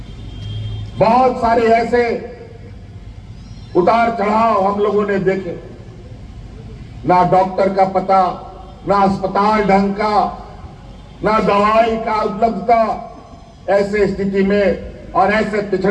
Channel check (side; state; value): both; identical; correlation 1.00